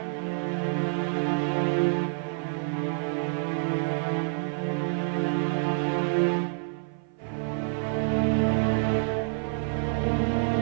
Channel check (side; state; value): left; silent; 55 dB below the other